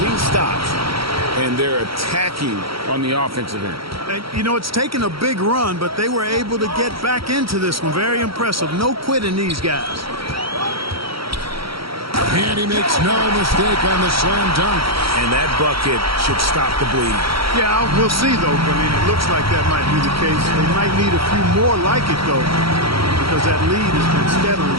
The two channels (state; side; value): late; left; 0.75 ms